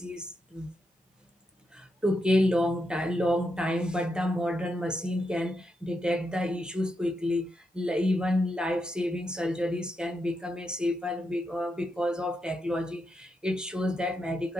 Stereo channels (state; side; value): normal; both; correlation 0.83